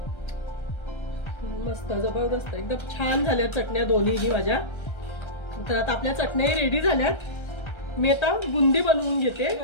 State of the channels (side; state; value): right; late; 1.3 ms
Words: मस्त जबरदस्त एकदम छान झाल्या चटण्या दोन्हीही माझ्या. तर आता आपल्या चटण्या रेडी झाल्यात. मी आता बुंदी बनवून घेते.